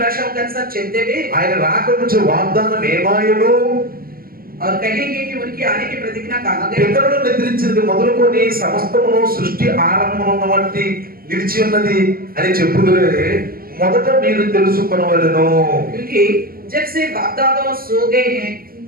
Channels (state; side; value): late; left; 0.42 ms